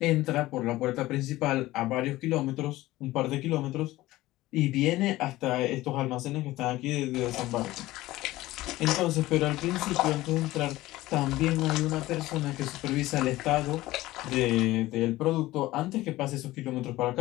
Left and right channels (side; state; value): right; quieter; 17.3 dB